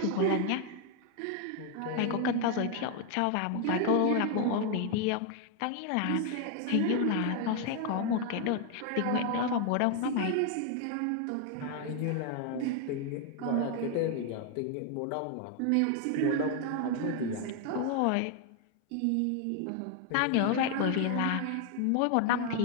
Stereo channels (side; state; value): both; different; correlation 0.00